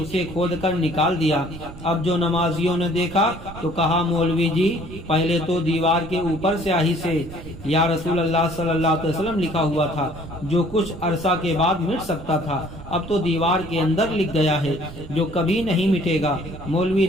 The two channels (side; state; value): right; noise; rumble, 14 dB below the sound